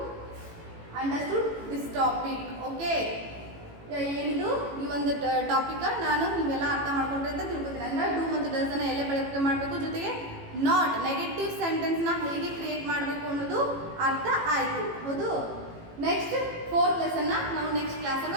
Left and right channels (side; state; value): left; late; 18 ms